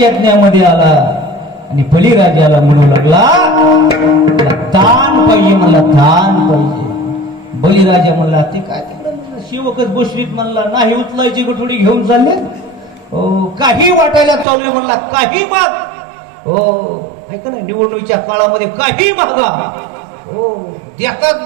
आला आणि बळीराजाला म्हणू लागला, दान पाहिजे मला, दान पाहिजे. बळीराजा म्हणला ते काय तिकडे म्हणलं, शिवकच बसवीत म्हणला, नाही उचलायची गठोडी घेऊन चालले, काही वाटायला चालू म्हणला, काही माग हो, ऐका ना, निवडणुकीच्या काळामध्ये काही मागा हो, देतात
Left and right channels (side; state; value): left; drops out; at 14.5 s